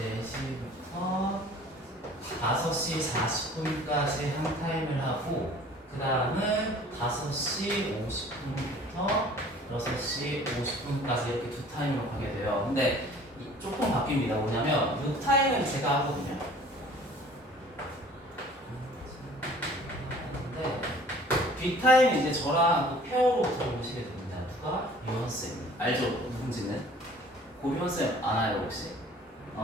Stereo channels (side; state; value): both; normal; correlation 0.50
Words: 4시부터 5시 40분까지 한 타임을 하고 그 다음은 5시 50분부터 6시 50분까지 이렇게 두 타임으로 가게 돼요. 근데 조금 바뀝니다. 뭐냐면 이 타임은 제가 하거든요. 근데 뒷타임은 이제 저랑 또 페어로 들어오시게 됩니다. 누가? 유원쌤. 알죠? 누군지는? 고유원쌤 아나요 혹시?